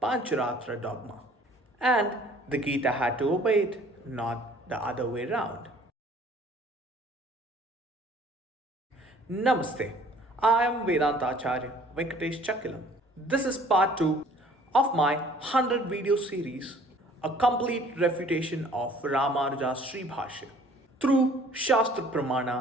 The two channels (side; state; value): both; normal; correlation 0.54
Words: Pāñcharātra dogma. And the Gita had to obey it, not the other way round. Namaste. I am Vedānta Āchārya Venkatesh Chakkilam. This is part 2 of my 100 video series, a complete refutation of Rāmānuja's Śrī Bhāṣya through Shastra